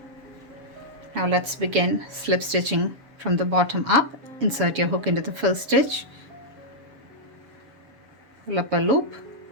Now let's begin slip stitching from the bottom up. Insert your hook into the first stitch, pull up a loop,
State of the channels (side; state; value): left; late; 7.2 ms